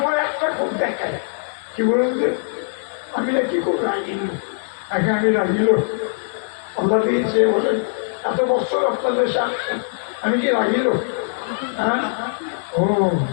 একটা খুব দেখায় কি বলুন যে আমি না কি খুব রাগিল, আগে আমি রাগিল আল্লাহ দিয়েছে বলেন এত বছর আপনাদের সাথে আমি কি রাগিল? হ্যাঁ ও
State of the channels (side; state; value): right; silent; digital silence